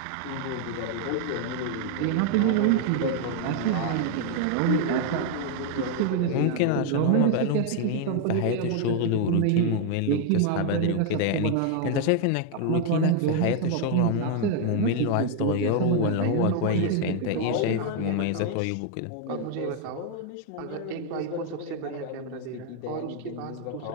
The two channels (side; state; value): both; different; correlation 0.00